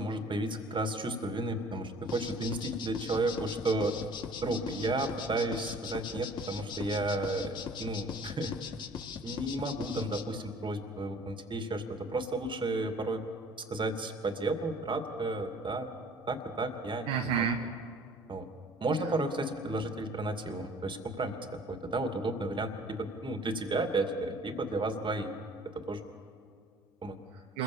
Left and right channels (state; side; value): normal; both; correlation 0.51